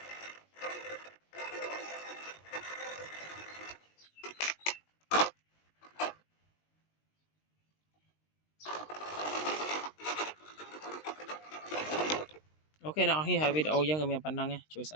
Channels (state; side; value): late; right; 19 ms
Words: អូខេអ្នកនរគ្នាហើយវីដេអូយើងក៏មានប៉ុណ្ណឹងជួយ